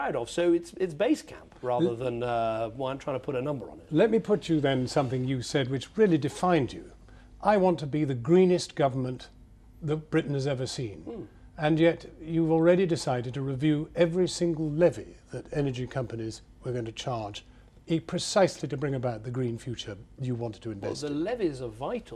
of. So it's base camp rather than one trying to put a number on it. Let me put you then something you said which really defined you. I want to be the greenest government that Britain has ever seen. And yet you've already decided to review every single levy that energy companies were going to charge precisely to bring about the green future you wanted to invest in. The levies are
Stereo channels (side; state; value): both; identical; correlation 1.00